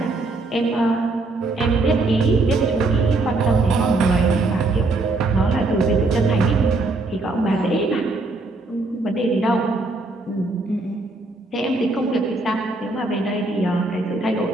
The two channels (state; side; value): quieter; left; 3.2 dB